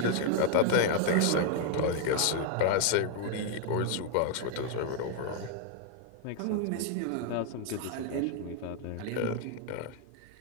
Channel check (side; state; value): both; different; correlation 0.00